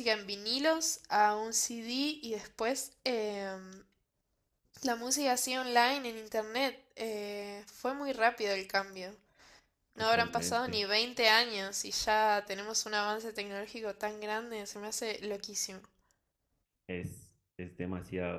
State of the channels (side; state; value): both; identical; correlation 1.00